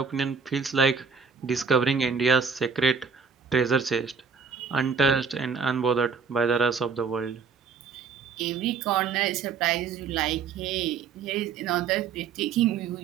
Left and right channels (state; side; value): quieter; left; 5.7 dB